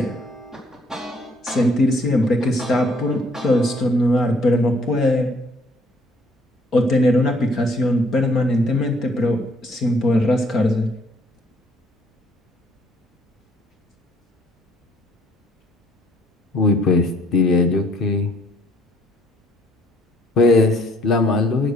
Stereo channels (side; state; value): both; normal; correlation 0.63